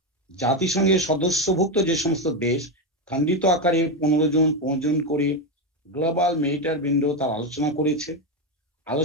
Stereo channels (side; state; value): both; normal; correlation 0.10